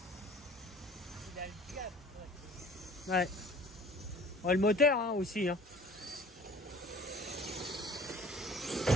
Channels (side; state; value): both; normal; correlation 0.47